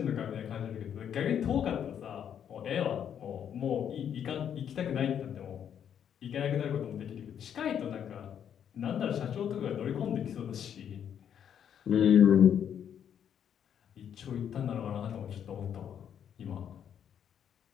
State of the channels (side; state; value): right; quieter; 8.9 dB